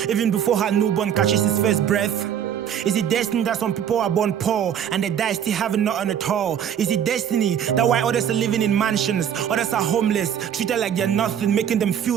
even before her newborn catches his first breath? Is it destined that some people are born poor and they die still having nothing at all? Is it destiny that while others are living in mansions, others are homeless, treated like they're nothing, making them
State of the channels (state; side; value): quieter; left; 9.1 dB